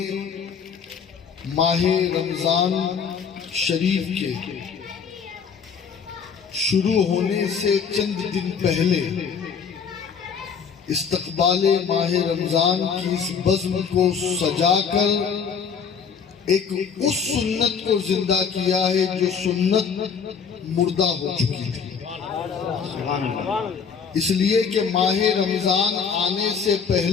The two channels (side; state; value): right; quieter; 6.4 dB